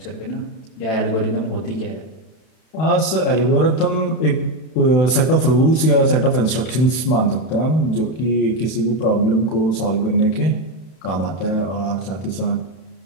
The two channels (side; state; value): right; late; 31 ms